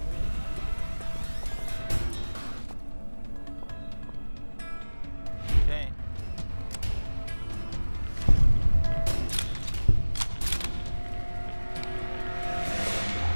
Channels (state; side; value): inverted; both; correlation -1.00